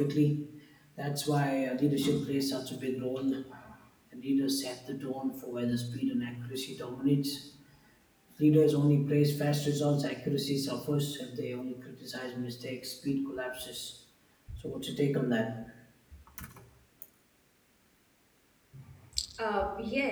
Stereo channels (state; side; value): identical; both; correlation 1.00